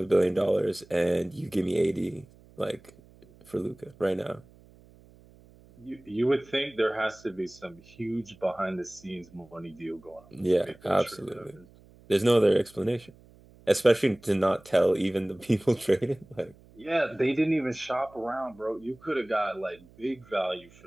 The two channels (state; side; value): noise; right; hum, 25 dB below the sound